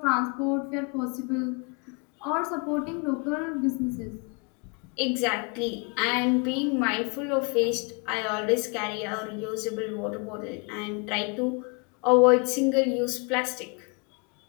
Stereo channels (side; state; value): right; quieter; 33.5 dB